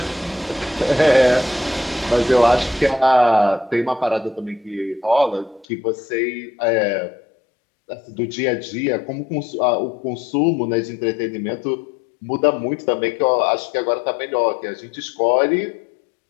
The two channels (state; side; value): drops out; right; at 5.7 s